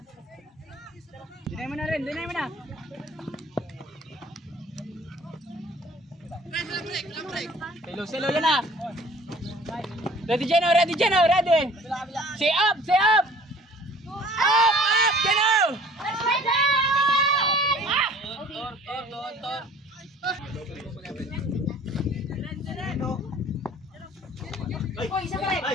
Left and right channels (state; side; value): normal; both; correlation 0.51